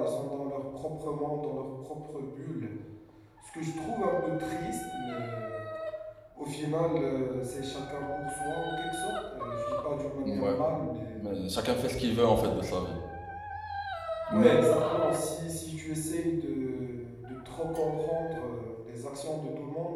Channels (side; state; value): both; identical; correlation 1.00